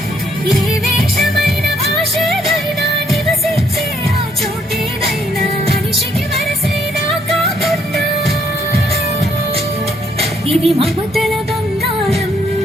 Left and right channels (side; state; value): both; normal; correlation 0.69